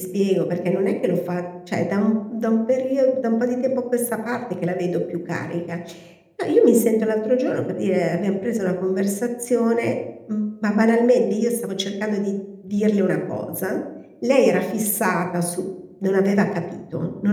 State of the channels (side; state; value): both; identical; correlation 1.00